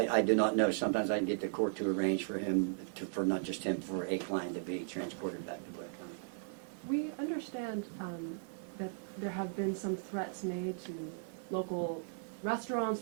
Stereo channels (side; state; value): left; silent; digital silence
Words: I do not know. Sometimes I can get the court to arrange for him, for not just him, for a client to be transported back to Blair County. We understand that there have been some threats made to local restaurants,